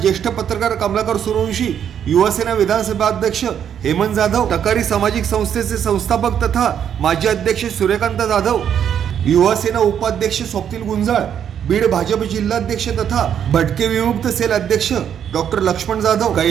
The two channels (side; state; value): left; quieter; 8.9 dB